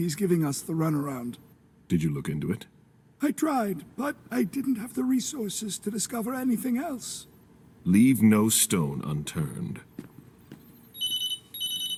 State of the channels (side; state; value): both; identical; correlation 1.00